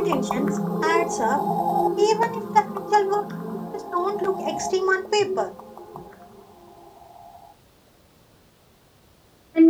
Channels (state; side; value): identical; both; correlation 1.00